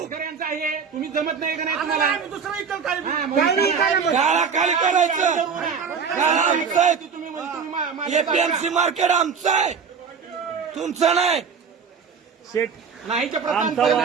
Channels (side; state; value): left; quieter; 6.2 dB